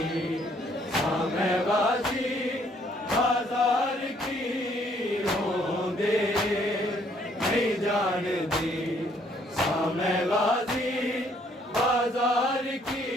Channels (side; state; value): both; normal; correlation 0.65